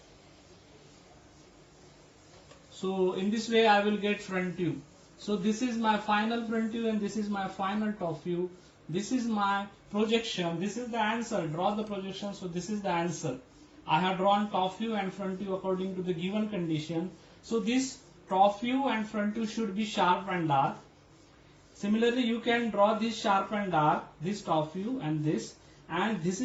So in this way I will get front view. So this is my final front view and this is my final top view. This is my projection. This is the answer. Draw the projection. So this is the answer. I have drawn top view and front view according to the given condition. So this top view and front view should be sharp and dark. Similarly, you can draw this sharp and dark, this top view and this. And this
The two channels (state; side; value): identical; both; correlation 1.00